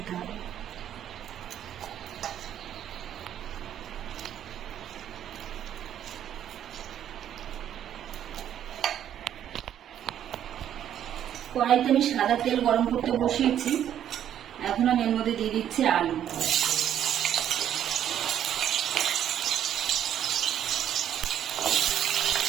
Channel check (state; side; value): quieter; left; 10.3 dB